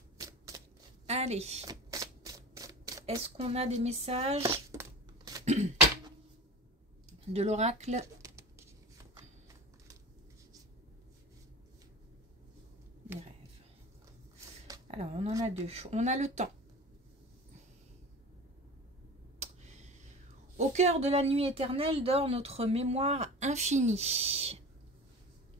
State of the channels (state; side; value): normal; both; correlation 0.33